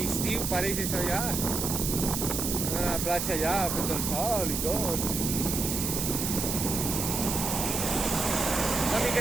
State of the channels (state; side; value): noise; right; hiss, 2 dB below the sound